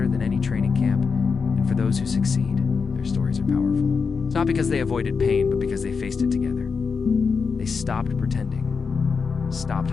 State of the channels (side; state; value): right; quieter; 5.3 dB